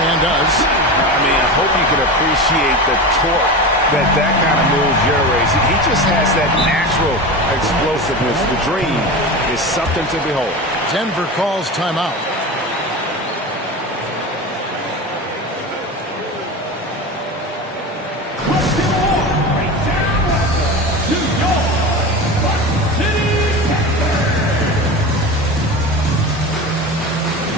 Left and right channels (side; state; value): both; normal; correlation 0.27